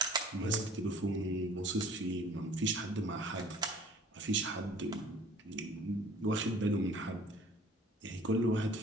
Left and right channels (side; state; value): both; normal; correlation 0.50